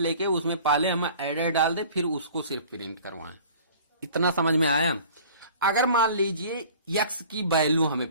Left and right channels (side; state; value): both; inverted; correlation -0.47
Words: उसमें पहले हम एडर डाल दें, फिर उसको सिर्फ प्रिंट करवाएं। इतना समझ में आया? अगर मान लीजिए x की वैल्यू